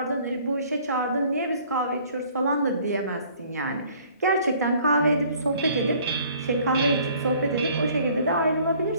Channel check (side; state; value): both; inverted; correlation -0.56